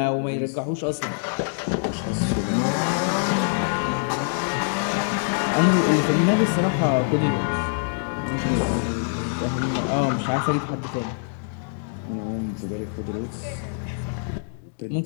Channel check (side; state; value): right; silent; digital silence